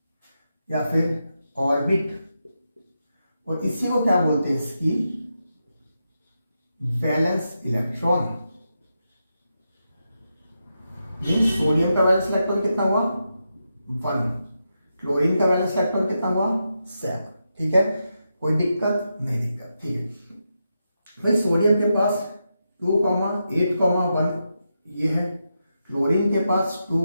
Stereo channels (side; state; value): both; inverted; correlation -0.86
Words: या फिर ऑर्बिट, और इसी को क्या बोलते हैं, इसकी वैलेंस इलेक्ट्रॉन। मीन्स सोडियम का वैलेंस इलेक्ट्रॉन कितना हुआ 1, क्लोरीन का वैलेंस इलेक्ट्रॉन कितना हुआ 7। ठीक है, कोई दिक्कत नहीं, दिक्कत ठीक है। भाई सोडियम के पास 2,8,1 ये है, क्लोरीन के पास